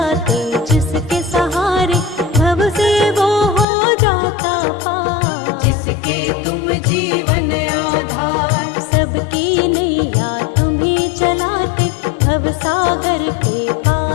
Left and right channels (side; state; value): right; drops out; at 3.7 s